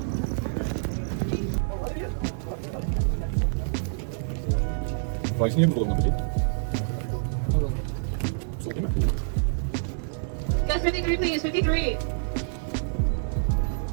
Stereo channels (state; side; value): silent; left; digital silence